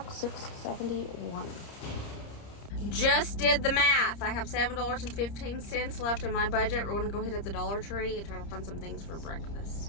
$6.71. Just did the math. I have $7.15 left in my budget. We're going to go hit at the Dollar Tree and try to find some things for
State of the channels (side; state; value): right; late; 30 ms